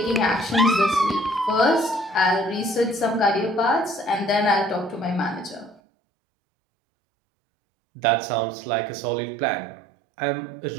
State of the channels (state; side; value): drops out; left; at 5.8 s